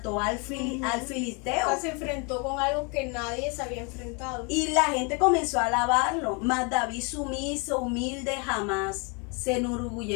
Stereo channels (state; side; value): quieter; right; 33.2 dB